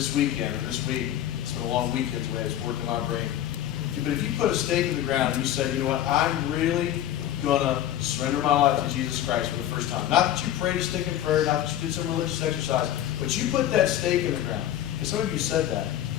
weekend or this week, it's been a long weekend the way it's working my brain. But if you put a stake in the ground and you said, you know what, I'm really going to surrender my life to Jesus Christ for the first time. Not that you prayed a stick in prayer, not that you did some religious exercise, but you put that stake in the ground. And some of you said that.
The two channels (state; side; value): quieter; right; 11.9 dB